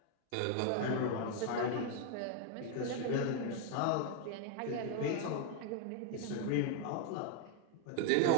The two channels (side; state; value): both; different; correlation 0.01